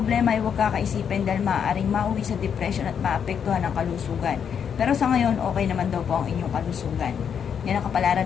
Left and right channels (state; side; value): quieter; right; 7.6 dB